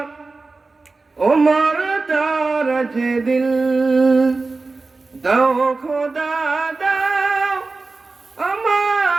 ওমর দারাজ দিল দাও খোদা দাও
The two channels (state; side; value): quieter; left; 3.7 dB